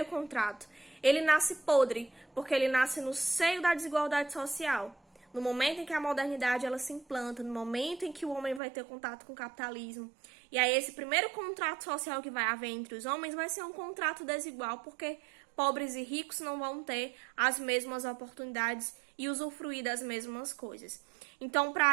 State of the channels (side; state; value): left; drops out; at 8.6 s